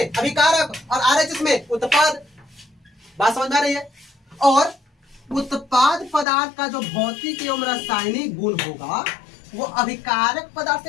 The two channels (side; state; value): right; drops out; at 6.2 s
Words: अभिकारक और RHS में उत्पाद। बात समझ में आ रही है? और उत्पाद पदार्थ का जो भौतिक एवं रासायनिक गुण होगा वो अभिकारक पदार्थ